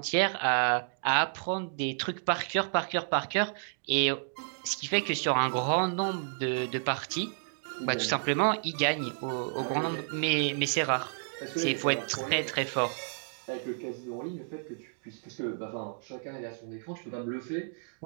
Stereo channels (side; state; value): left; silent; digital silence